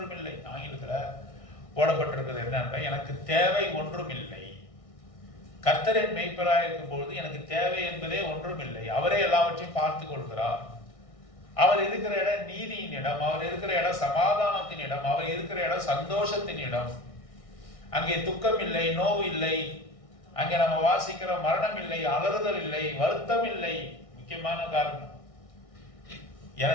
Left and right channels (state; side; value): late; right; 1.6 ms